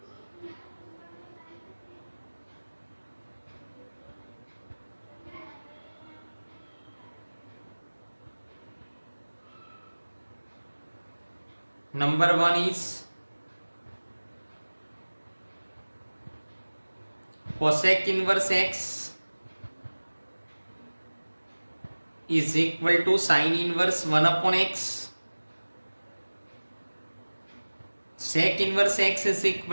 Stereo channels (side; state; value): both; inverted; correlation -1.00